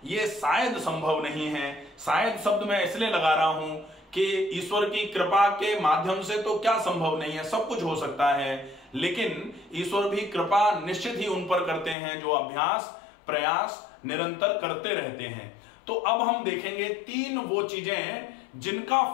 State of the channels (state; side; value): drops out; right; at 12.0 s